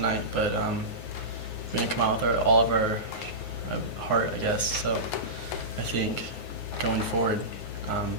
but we didn't come out with all of our heart, I guess. So I think going forward,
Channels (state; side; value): late; right; 9.5 ms